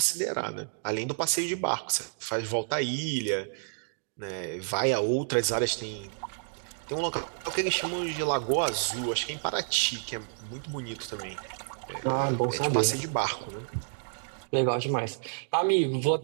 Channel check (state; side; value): silent; left; digital silence